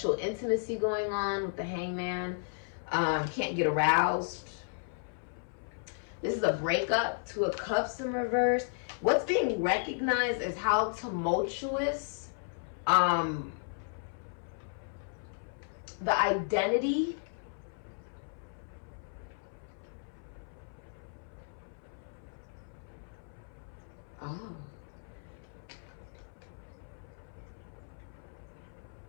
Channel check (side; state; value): right; silent; 55 dB below the other